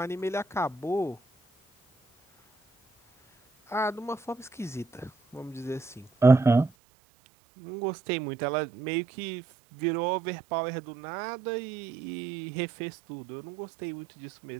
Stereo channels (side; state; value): left; drops out; at 6.7 s